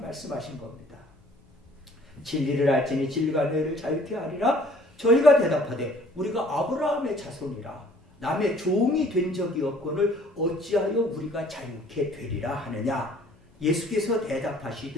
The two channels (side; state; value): both; normal; correlation 0.55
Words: 겁니다. 진리를 알지니 진리가 너희를 자유케 하리라. 저희가 대답하되 우리가 아브라함의 자손이라 남의 종이 된 적이 없거늘 어찌하여 우리가 자유케 되리라 하느냐. 예수께서